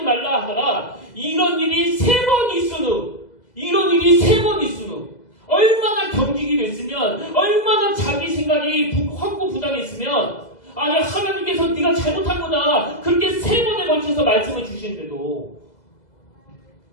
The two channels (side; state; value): right; late; 2.0 ms